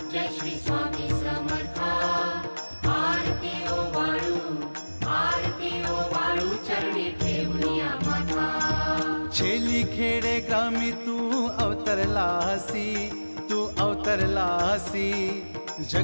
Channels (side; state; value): both; inverted; correlation -1.00